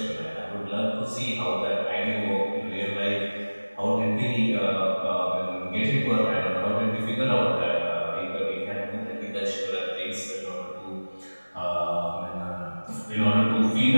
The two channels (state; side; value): inverted; both; correlation -1.00